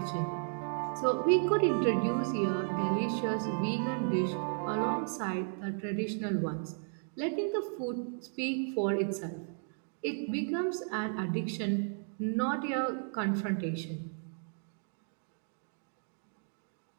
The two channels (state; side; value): silent; left; 55 dB below the other